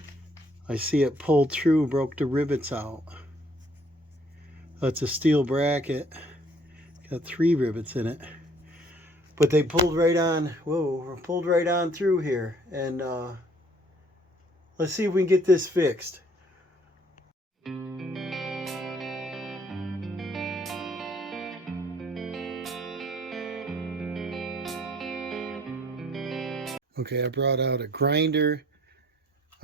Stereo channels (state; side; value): normal; both; correlation 0.60